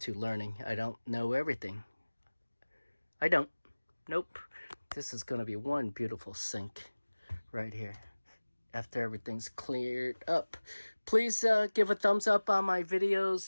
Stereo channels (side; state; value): both; inverted; correlation -1.00